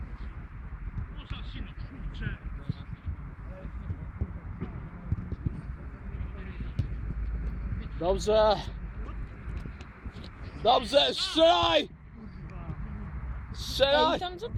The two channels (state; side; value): identical; both; correlation 1.00